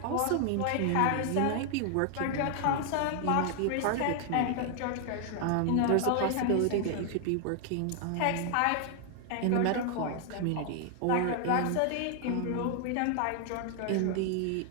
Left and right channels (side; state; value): both; different; correlation 0.00